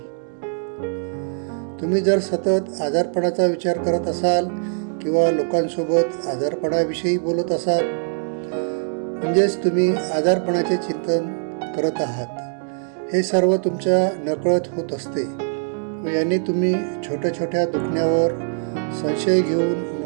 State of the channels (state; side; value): silent; left; digital silence